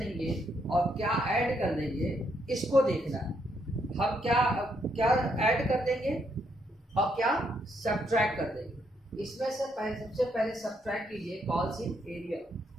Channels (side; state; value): both; normal; correlation 0.75